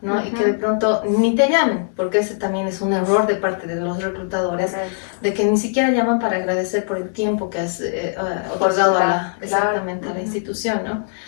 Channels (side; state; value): right; silent; digital silence